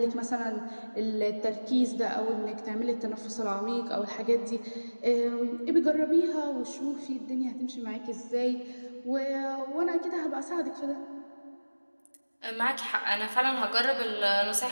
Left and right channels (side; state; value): both; inverted; correlation -1.00